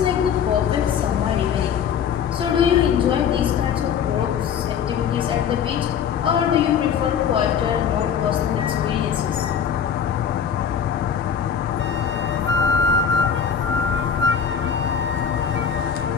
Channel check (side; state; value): right; quieter; 7.6 dB